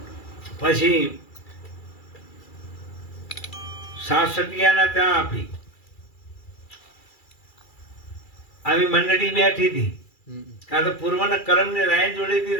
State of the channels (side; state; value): right; late; 2.3 ms